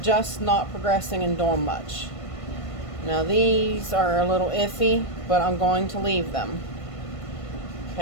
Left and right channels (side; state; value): right; late; 1.5 ms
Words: not progressing and doing much. Now these are a little iffy, but I'm going to leave them.